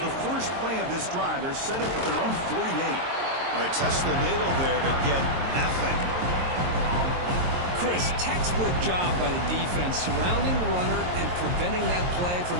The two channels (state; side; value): late; left; 22 ms